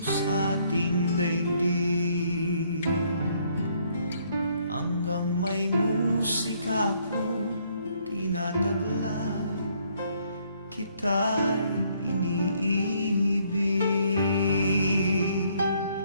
sa ating daigdig, hanggang may musika akong tinataglay, kita'y iniibig.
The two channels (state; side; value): inverted; both; correlation -0.67